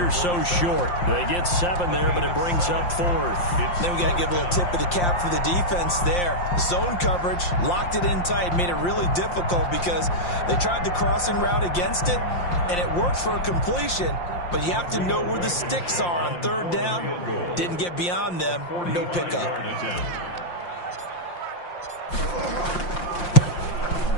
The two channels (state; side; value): late; right; 5.7 ms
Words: so short. They get 7 there, but it brings up 4th. Then we got to give a little tip of the cap for the defense there. Zone coverage, locked it in tight, made it really difficult because they tried the crossing route against it, and it worked for a completion, but you have to know where the sticks are on 3rd down. Didn't get beyond them, no pickup.